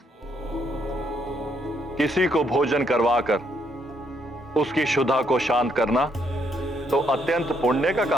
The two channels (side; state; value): both; normal; correlation 0.73